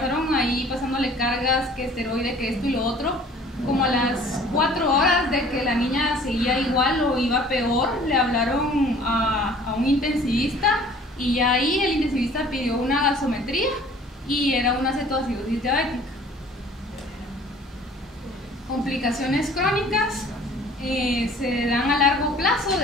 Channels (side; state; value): both; normal; correlation 0.51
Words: ahí pasándole cargas, que esteroide, que esto y lo otro. Como a las 4 horas de que la niña seguía igual o iba peor, le hablaron a un intensivista, y ya ahí el intensivista pidió una gasometría y era una cetoacidosis diabética. Complicaciones crónicas se dan a largo plazo